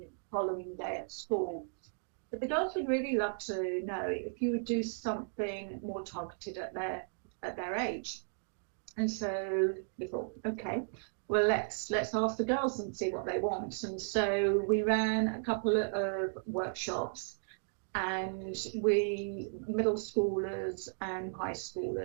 the following day at school. But the girls would really love to know if you would do something more targeted at their age. And so we thought, okay, well, let's ask the girls and see what they want. And so we ran a couple of workshops, and middle schoolers and high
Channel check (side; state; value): left; silent; digital silence